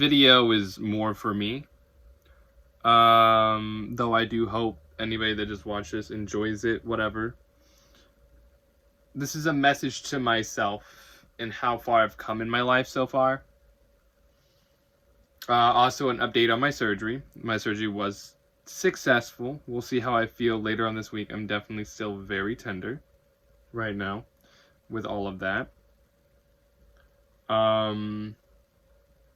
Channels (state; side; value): identical; both; correlation 1.00